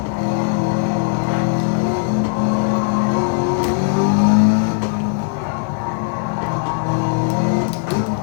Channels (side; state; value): right; silent; 67 dB below the other